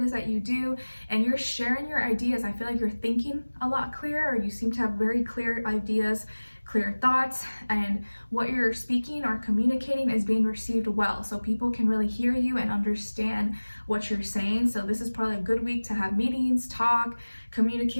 is that you do, and you're sharing your ideas. I feel like you're thinking a lot clearer, or you seem to have very clear ideas, clear thoughts, and what you're speaking or communicating is being received well. So people can really hear you and understand what you're saying. So this is probably a good week to have meetings, talk,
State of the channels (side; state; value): both; inverted; correlation -1.00